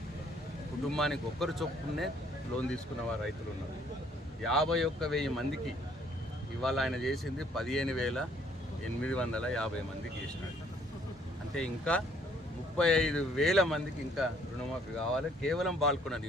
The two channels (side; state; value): both; normal; correlation 0.63